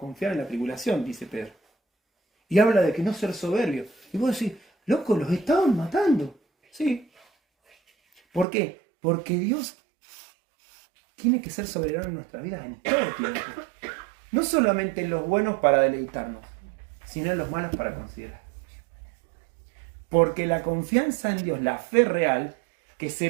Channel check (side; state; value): left; drops out; at 8.5 s